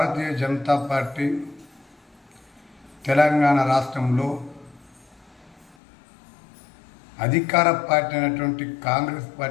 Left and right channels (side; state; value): right; drops out; at 5.8 s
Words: జనతా పార్టీ తెలంగాణ రాష్ట్రంలో అధికార పార్టీ అయినటువంటి కాంగ్రెస్